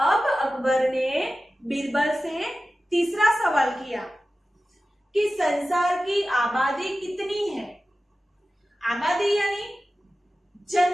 अकबर ने बीरबल से तीसरा सवाल किया कि संसार की आबादी कितनी है। आबादी यानी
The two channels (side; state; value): both; normal; correlation 0.95